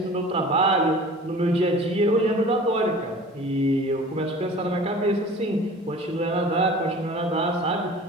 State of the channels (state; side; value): normal; both; correlation 0.43